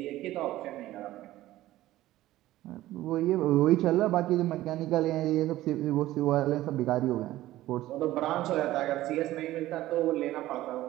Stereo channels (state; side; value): quieter; left; 15.5 dB